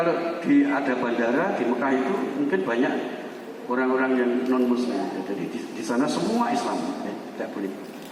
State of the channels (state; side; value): identical; both; correlation 1.00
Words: ada bandara di Mekah itu mungkin banyak orang-orang yang non muslim ya. Jadi di sana semua Islam ya, tidak boleh.